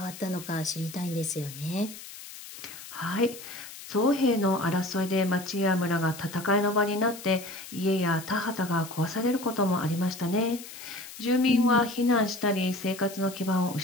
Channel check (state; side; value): noise; left; hiss, 14 dB below the sound